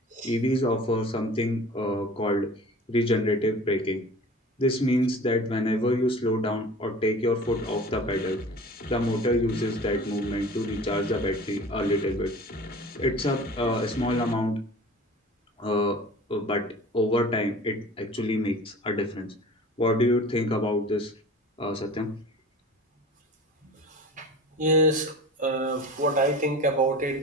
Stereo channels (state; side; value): normal; both; correlation 0.40